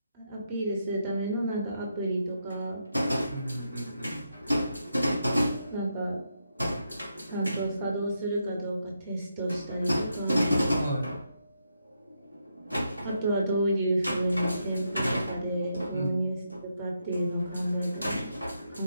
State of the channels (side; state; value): both; inverted; correlation -0.81